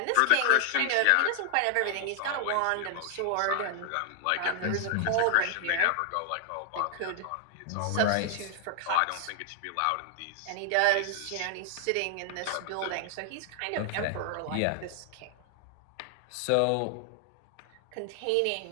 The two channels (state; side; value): different; both; correlation 0.00